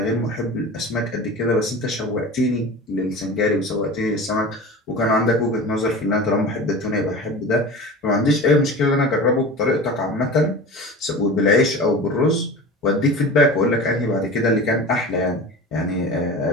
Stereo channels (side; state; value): both; normal; correlation 0.34